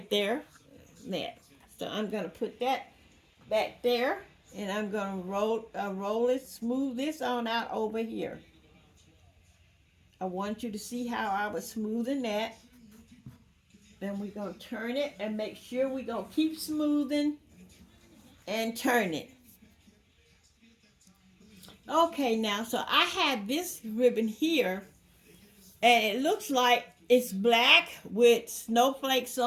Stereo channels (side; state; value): both; identical; correlation 1.00